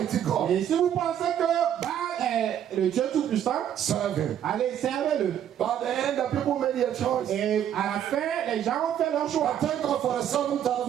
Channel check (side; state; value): left; quieter; 10.1 dB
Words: God, Et si vous pensez que Baal est est le Dieu Tout-Puissant, serve him. allez, servez-le. But at the end, the people made their choice. Et à la fin, les gens ont fait leur choix. I thank God for the